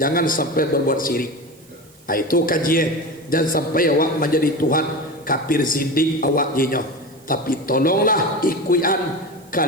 jangan sampai berbuat syirik. Itu kajian, jangan sampai awak menjadi Tuhan kafir zindik awak jenyo. Tapi tolonglah ikuyan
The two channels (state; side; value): noise; right; hiss, 28 dB below the sound